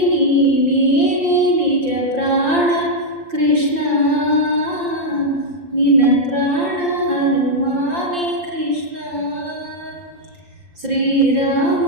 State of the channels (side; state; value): left; late; 5.7 ms